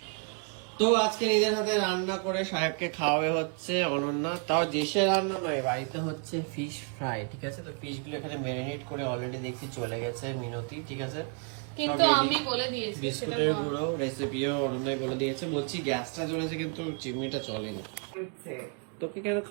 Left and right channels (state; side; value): quieter; left; 39.6 dB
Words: তো আজকে নিজের হাতে রান্না করে সাহেবকে খাওয়াবে হচ্ছে অনন্যা, তাও দেশের রান্না নয়, বাড়িতে হচ্ছে ফিশ ফ্রাই। ঠিক আছে, তো ফিশ গুলো এখানে ম্যারিনেট করে অলরেডি দেখছি চলে গেছে মিনতি। ঠিক আছে, কিন্তু আমি বলে দিয়েছি বিস্কুটের গুঁড়ো রেসিপিও অনন্যাই বলে দিয়েছে। বলছি গ্যাসটা জ্বলেছে কিন্তু চিমনিটা চলেনি। তোকে কেন